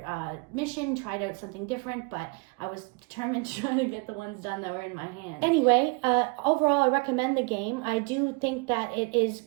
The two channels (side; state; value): left; quieter; 30.9 dB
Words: mission, tried out something different. But I was determined to try to get the ones done that were in my hand. Anyway, overall, I recommend the game. I do think that it is